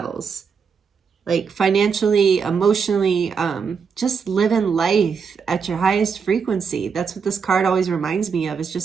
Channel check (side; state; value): left; quieter; 6.0 dB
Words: like financially, emotionally, just living life at your highest frequency. That's what this card always reminds me of, is